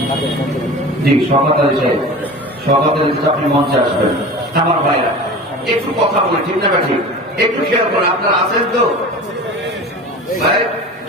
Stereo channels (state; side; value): normal; both; correlation 0.35